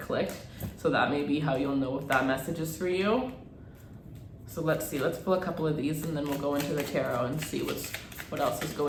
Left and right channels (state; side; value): identical; both; correlation 1.00